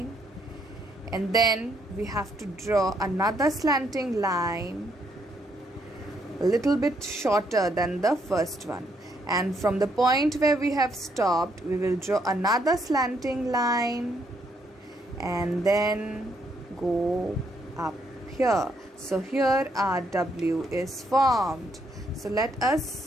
and then we have to draw another slanting line a little bit shorter than the first one. And from the point where we have stopped, we will draw another slanting line and then go up here. So here our W is formed. So let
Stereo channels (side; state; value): both; normal; correlation 0.73